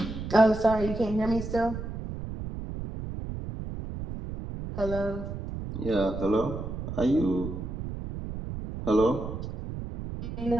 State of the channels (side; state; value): right; noise; rumble, 7 dB below the sound